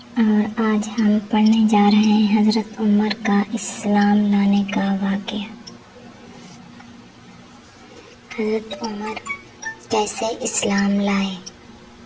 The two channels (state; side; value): identical; both; correlation 1.00